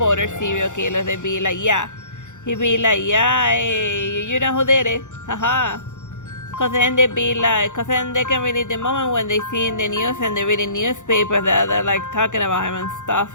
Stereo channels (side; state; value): right; late; 0.85 ms